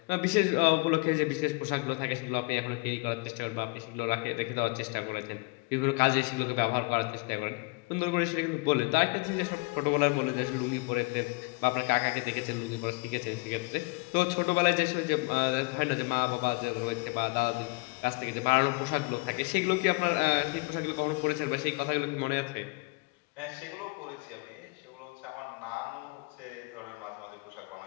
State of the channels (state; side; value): quieter; right; 28.0 dB